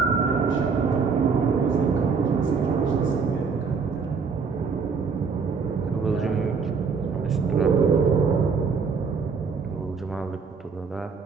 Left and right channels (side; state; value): left; quieter; 5.4 dB